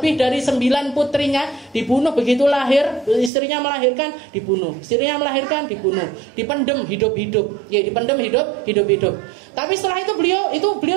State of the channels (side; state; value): left; drops out; at 3.3 s